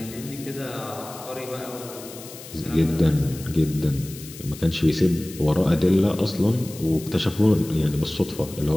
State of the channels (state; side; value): noise; left; hiss, 15 dB below the sound